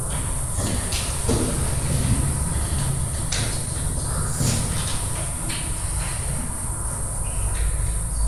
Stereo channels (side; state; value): both; identical; correlation 1.00